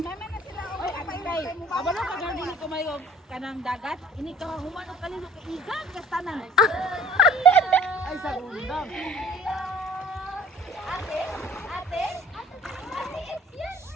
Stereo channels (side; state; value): both; normal; correlation 0.52